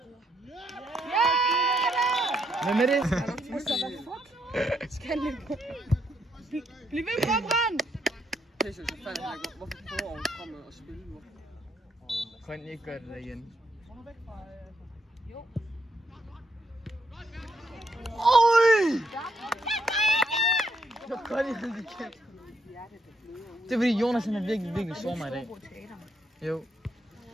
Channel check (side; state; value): both; normal; correlation 0.75